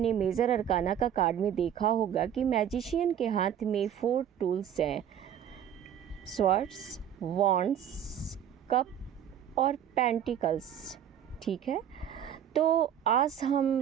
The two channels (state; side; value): quieter; left; 9.7 dB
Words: मेजर अरकाना का कार्ड में देखा होगा कि मैजिशियन के हाथ में 4 टूल्स हैं, स्वॉर्ड्स, वॉन्ड्स, कप और पेंटिकल्स। ठीक है, तो आज